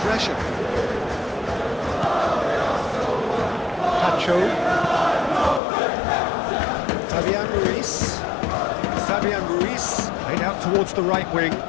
Pacho. Fabian Ruiz. Laid out towards the right wing.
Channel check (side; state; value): right; drops out; at 5.6 s